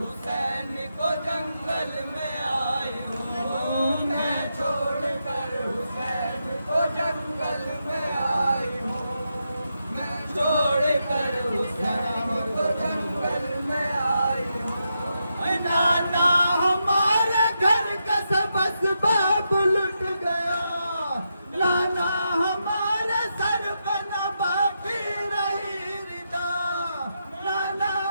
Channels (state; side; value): inverted; both; correlation -0.85